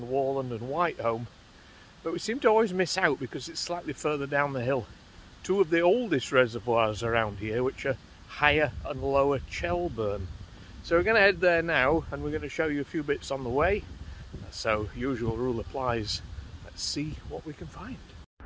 Warland and Whitehome, but we seem to always miss out because it's slightly further down the hill. Two of the oldest reservoirs around here, which are Higher and Lower Chelburn. So we're going to head there now, and we're going to show you a few bits on the way. So usual rule applies. Let's see what we can find.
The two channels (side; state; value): both; identical; correlation 1.00